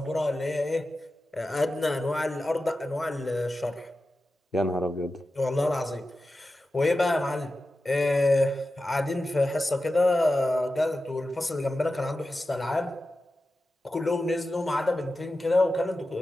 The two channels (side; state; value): both; normal; correlation 0.93